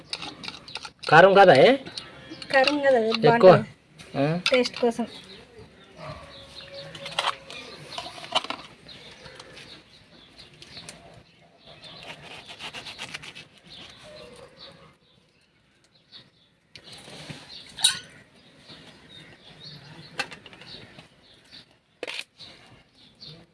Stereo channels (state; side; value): identical; both; correlation 1.00